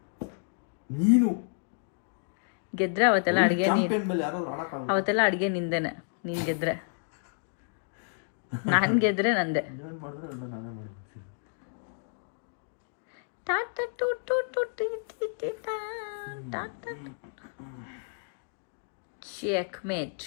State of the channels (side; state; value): right; silent; digital silence